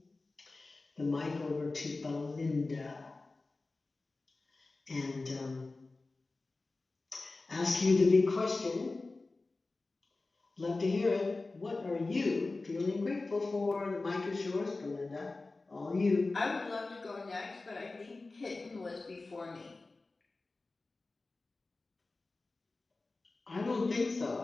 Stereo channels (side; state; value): right; quieter; 3.4 dB